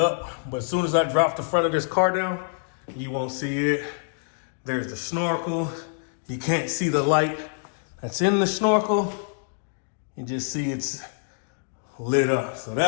but as soon as I drop the front of this car down, you won't see it. There's the snorkel. You can't see the light that's in the snorkel. You just see it's lit up. So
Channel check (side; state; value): right; silent; digital silence